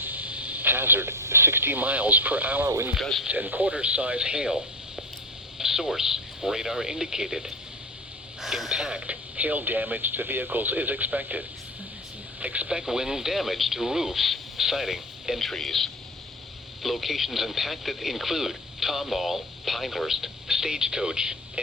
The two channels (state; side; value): normal; both; correlation 0.28